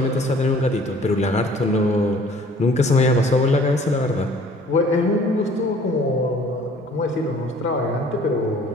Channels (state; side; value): normal; both; correlation 0.53